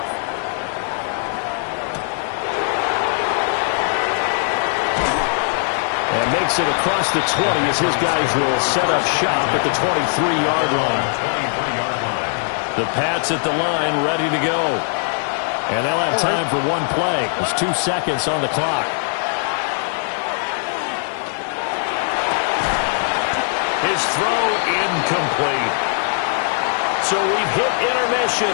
And makes it across the 20 as his guys will set up shop at the 23-yard line. The Pats at the line ready to go. And they'll have time for one play. There's 2 seconds on the clock. His throw incomplete. So we've hit intermission.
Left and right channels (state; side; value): silent; right; digital silence